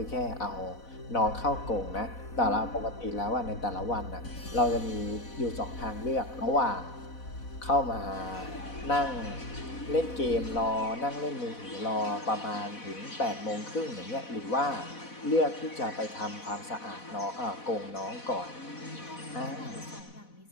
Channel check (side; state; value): right; late; 4.1 ms